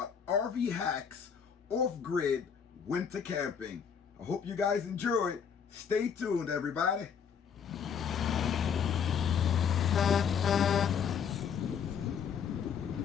RV hacks, off-grid, winter camping. I hope you guys enjoy it. Stay tuned, everybody.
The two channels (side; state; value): right; quieter; 7.2 dB